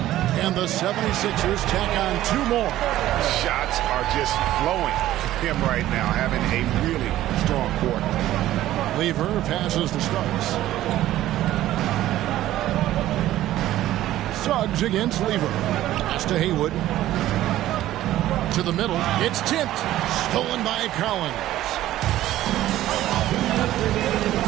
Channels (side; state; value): left; quieter; 14.2 dB